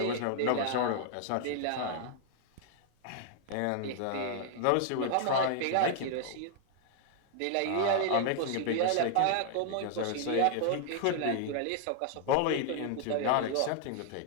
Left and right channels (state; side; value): different; both; correlation 0.00